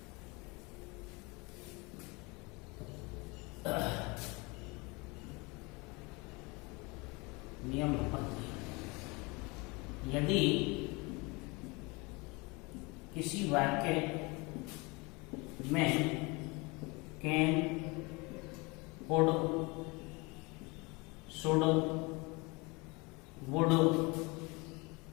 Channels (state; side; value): quieter; right; 26.9 dB